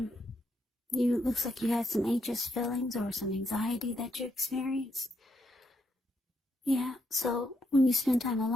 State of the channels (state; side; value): normal; both; correlation 0.78